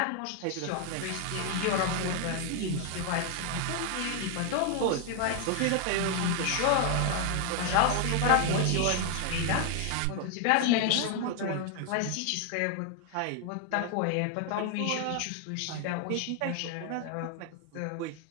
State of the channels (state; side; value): different; both; correlation 0.00